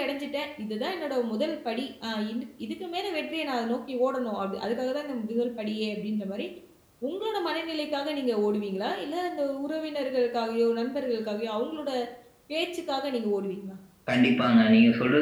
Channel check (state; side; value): identical; both; correlation 1.00